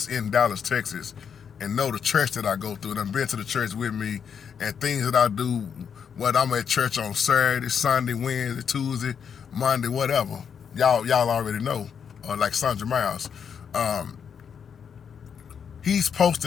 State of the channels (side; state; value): right; quieter; 7.2 dB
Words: in Dallas, Texas, and know the church that I go through, and I've been to the church with me, and things that I do, whether I'm at church on Saturday, Sunday, Wednesday, Tuesday, Monday, whatever. Y'all already know. Like Sandra Miles. He's